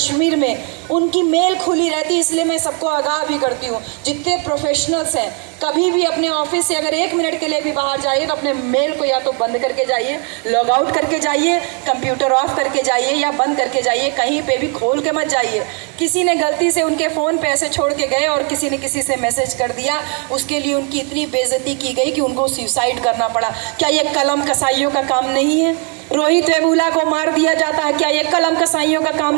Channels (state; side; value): quieter; left; 38.1 dB